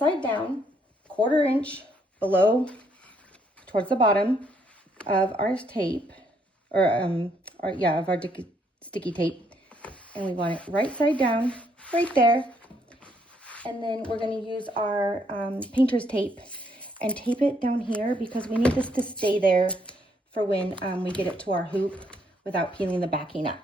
down, 1/4 inch below, towards the bottom of our tape, or of our sticky tape. And we want it right side down, right there. And then we're going to use our painter's tape and tape it down here because we need this to stay there for when we get it to our hoop without peeling the backing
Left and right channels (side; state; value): both; normal; correlation 0.71